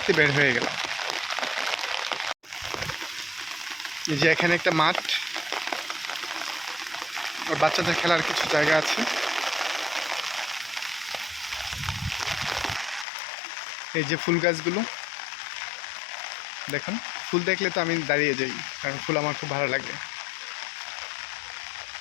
বের হয়ে গেলাম। এই যে এখানে একটা মাঠ, আর বাচ্চাদের খেলার কিছু জায়গা আছে। এই যে ফুল গাছগুলো দেখুন, ফুল দেখলে তো আমি দাঁড়িয়ে যাই, কারণ ফুল আমার খুব ভালো লাগে।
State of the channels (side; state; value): right; drops out; at 13.1 s